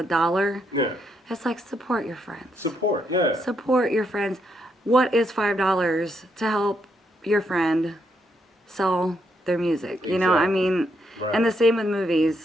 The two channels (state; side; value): normal; both; correlation 0.78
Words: Yeah. It's like support your friends. Support, yeah. Support your friends. What is $5 to help your friend sell their music? Exactly. I mean, and the same with